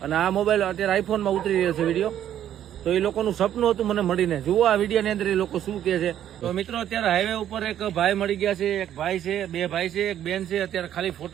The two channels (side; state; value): left; quieter; 10.9 dB